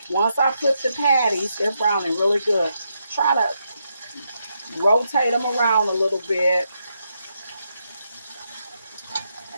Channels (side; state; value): both; inverted; correlation -0.82